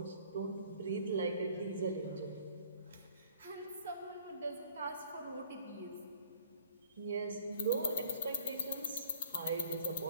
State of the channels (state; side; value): inverted; both; correlation -0.52